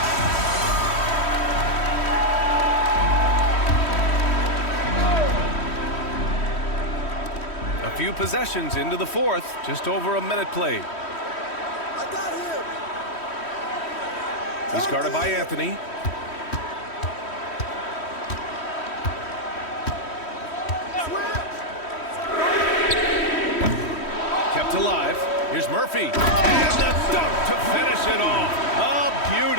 Few possessions into the fourth, just over a minute played. He's guarded by Anthony. Kept alive. Here's Murphy. And the dunk to finish it off. A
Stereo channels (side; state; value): right; late; 3.1 ms